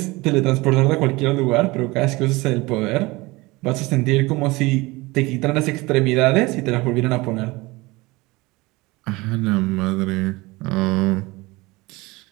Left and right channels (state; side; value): quieter; left; 22.4 dB